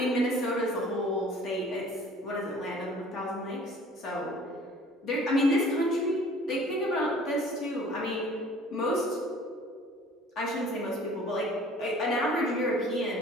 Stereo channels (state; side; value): normal; both; correlation 0.50